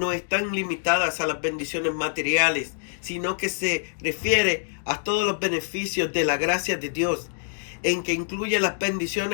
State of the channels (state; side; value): silent; right; digital silence